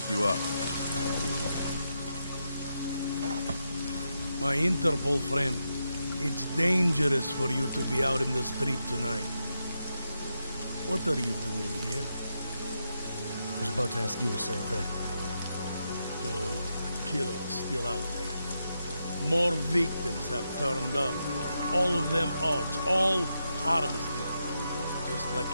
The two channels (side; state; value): both; inverted; correlation -0.85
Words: you up. My Interpol friend, it's dangerous for you to be out in the street tonight. What are you doing here? I was about to ask you the same thing. Oh, the killer is still out there. More victims have turned up. All of them odds, all harvested. Just like